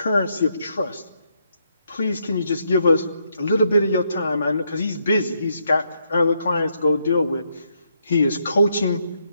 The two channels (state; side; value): inverted; both; correlation -0.77